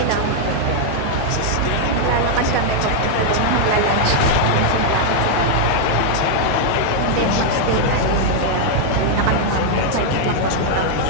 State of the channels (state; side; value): different; both; correlation 0.00